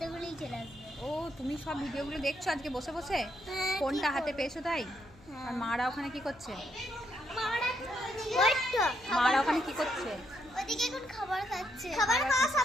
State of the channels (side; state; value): left; noise; hum, 24 dB below the sound